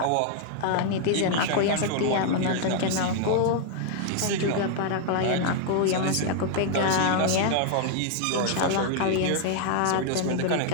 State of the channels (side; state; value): both; different; correlation 0.00